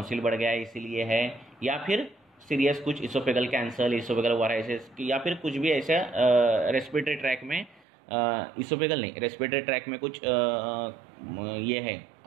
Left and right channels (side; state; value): left; drops out; at 7.8 s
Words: बढ़ गया है इसीलिए है, या फिर सीरियस कुछ इसोफेगल कैंसर, इसोफेगल वायरस, या फिर कुछ भी ऐसा रेस्पिरेटरी ट्रैक में, इसोफेगल नहीं, रेस्पिरेटरी ट्रैक में कुछ ये है,